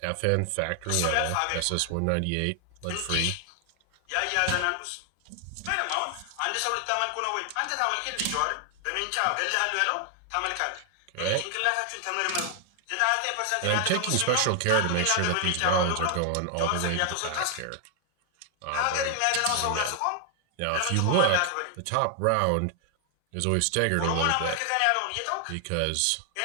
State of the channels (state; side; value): different; both; correlation 0.00